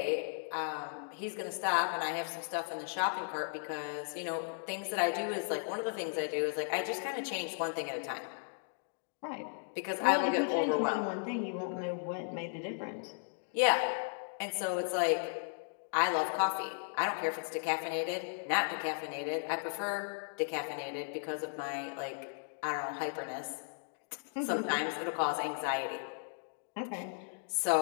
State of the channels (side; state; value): right; silent; digital silence